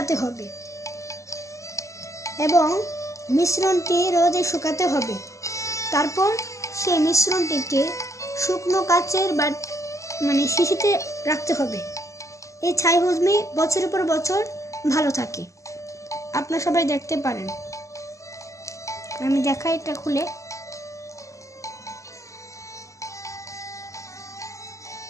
হবে এবং মিশ্রণটি রোদে শুকাতে হবে। তারপর সেই মিশ্রণটিকে শুকনো কাচের শিশিতে রাখতে হবে। এই ছাই হজমি বছরের পর বছর ভালো থাকে। আপনারা সবাই দেখতে পারেন। আমি দেখাই এটা খুলে।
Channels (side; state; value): right; late; 0.15 ms